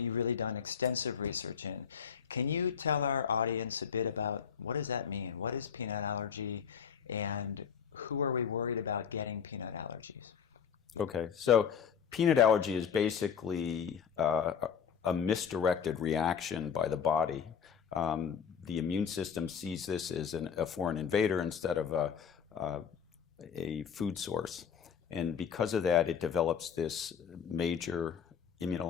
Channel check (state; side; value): quieter; right; 7.3 dB